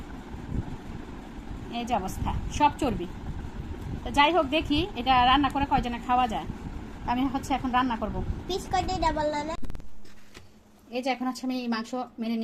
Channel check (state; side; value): identical; both; correlation 1.00